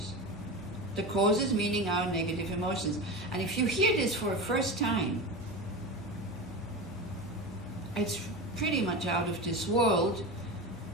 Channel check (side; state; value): both; normal; correlation 0.25